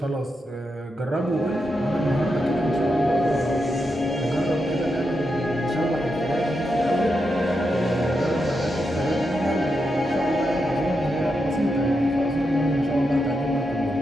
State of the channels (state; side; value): normal; both; correlation 0.85